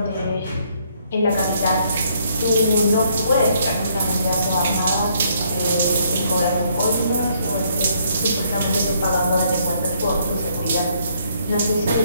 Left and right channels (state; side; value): inverted; both; correlation -0.68